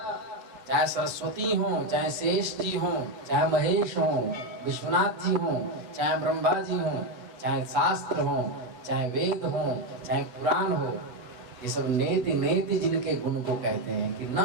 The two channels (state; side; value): late; left; 8.2 ms